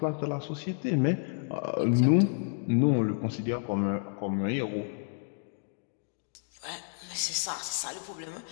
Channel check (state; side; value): silent; right; digital silence